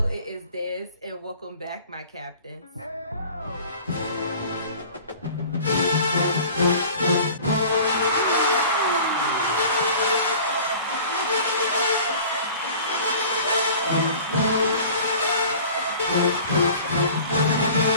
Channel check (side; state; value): both; inverted; correlation -0.44